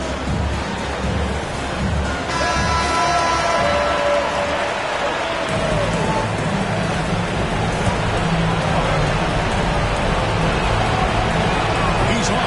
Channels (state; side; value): identical; both; correlation 1.00